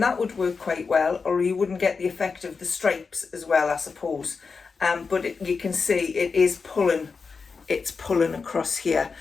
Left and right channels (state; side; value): quieter; right; 5.0 dB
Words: that would work quite well, or you wouldn't get the effect of the stripes as well, I suppose. But you can see it is pulling. It's pulling across here.